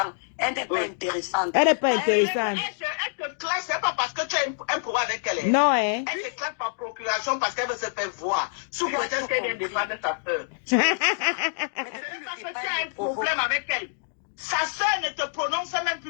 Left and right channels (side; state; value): right; silent; digital silence